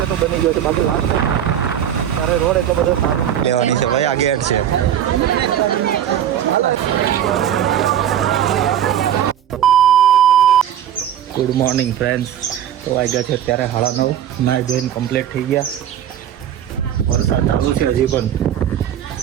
તો બની ગયો છે, બાકી લાસ્ટ ત્યારે રોડ એટલો બધો સારો લેવાની છે ભાઈ. આ ગેટ છે. Good morning friends. તો વાગ્યા છે અત્યારે 9:30. નાઈ ધોઈને કમ્પ્લીટ થઈ ગયા. વરસાદ ચાલુ છે હજી પણ.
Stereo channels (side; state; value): left; quieter; 10.2 dB